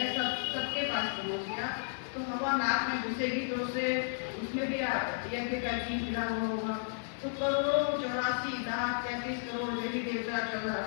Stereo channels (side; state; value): right; silent; digital silence